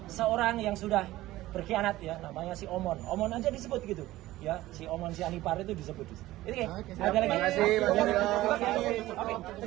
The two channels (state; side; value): quieter; left; 16.5 dB